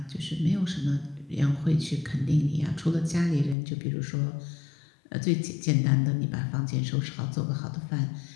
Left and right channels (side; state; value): right; drops out; at 3.6 s